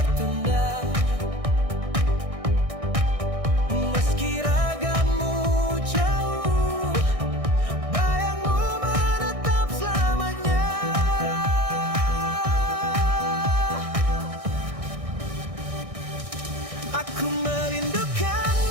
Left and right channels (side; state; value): left; late; 1.6 ms